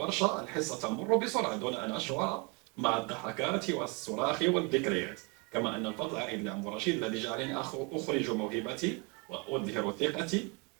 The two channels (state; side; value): quieter; left; 30.9 dB